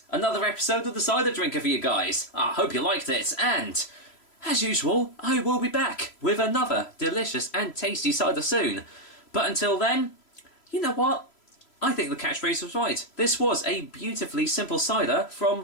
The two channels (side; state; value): right; late; 3.0 ms